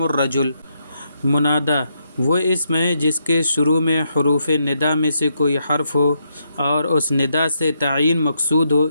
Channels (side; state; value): both; inverted; correlation -0.79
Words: الرجل۔ منادی وہ اسم ہے جس کے شروع میں حروف ندا میں سے کوئی حرف ہو اور اس ندا سے تعین مقصود ہو،